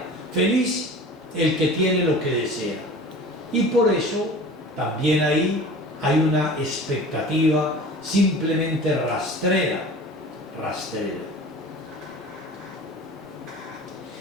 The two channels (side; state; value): both; normal; correlation 0.40